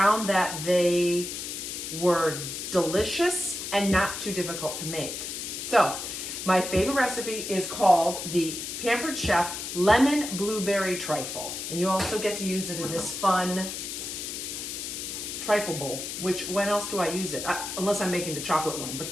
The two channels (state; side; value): noise; left; hiss, 6 dB below the sound